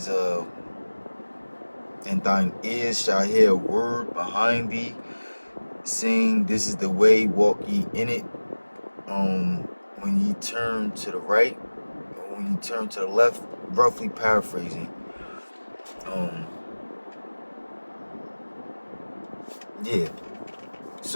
and thine ears shall hear a word behind thee, saying, this is the way, walk ye in it. When ye turn to the right, or when you turn to the left, roughly paraphrasing. Yeah.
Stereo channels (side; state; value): both; inverted; correlation -1.00